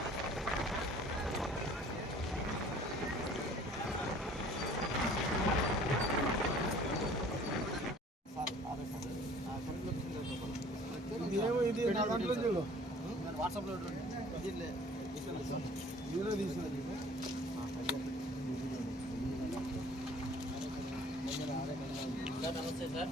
ఇది నా దాంట్లో చూడు వాట్సాప్లో నమస్తే సార్.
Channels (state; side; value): normal; both; correlation 0.52